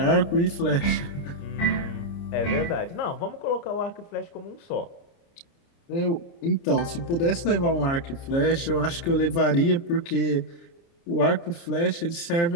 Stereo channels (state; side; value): late; right; 29 ms